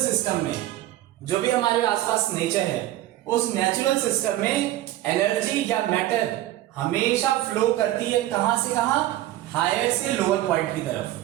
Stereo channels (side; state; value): left; quieter; 14.9 dB